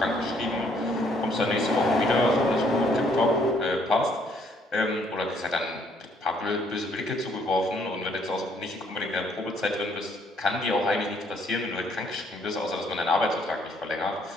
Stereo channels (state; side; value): normal; both; correlation 0.66